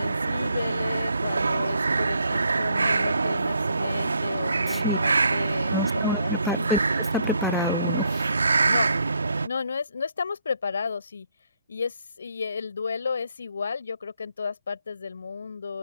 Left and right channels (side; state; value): both; inverted; correlation -0.72